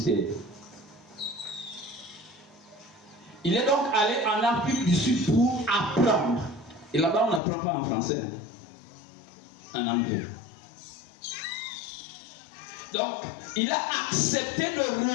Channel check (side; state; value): right; drops out; at 7.4 s